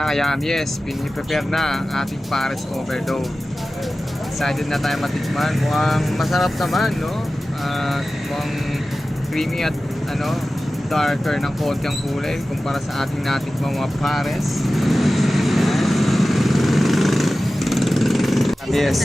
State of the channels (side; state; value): both; normal; correlation 0.95